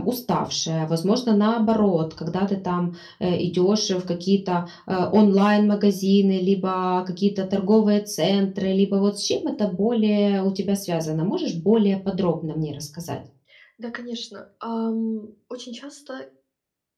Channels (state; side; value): identical; both; correlation 1.00